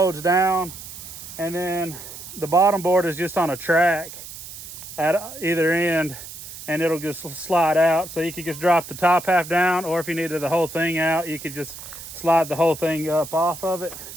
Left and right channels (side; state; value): right; noise; hiss, 13 dB below the sound